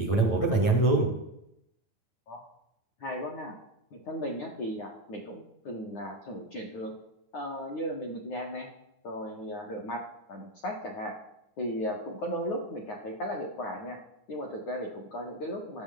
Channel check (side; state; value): right; late; 9.1 ms